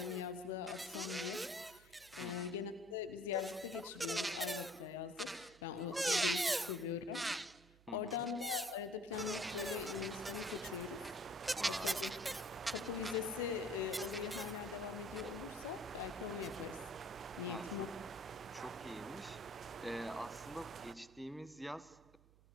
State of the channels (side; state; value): right; noise; hum, 25 dB below the sound